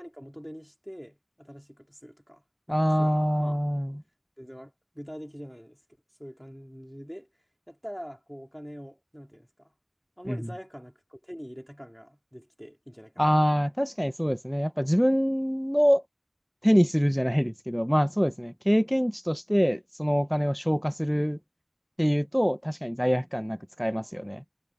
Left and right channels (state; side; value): identical; both; correlation 1.00